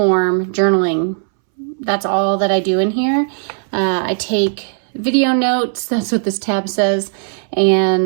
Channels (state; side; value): silent; left; 65 dB below the other